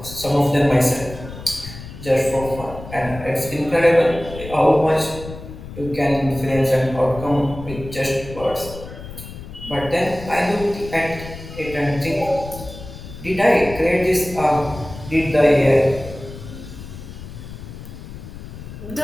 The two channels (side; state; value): left; noise; rumble, 13 dB below the sound